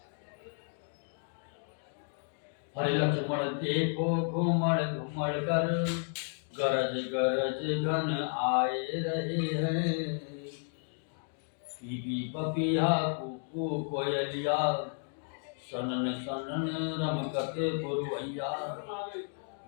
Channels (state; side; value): silent; right; 56 dB below the other